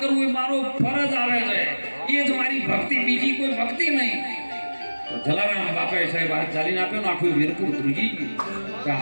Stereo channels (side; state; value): both; inverted; correlation -1.00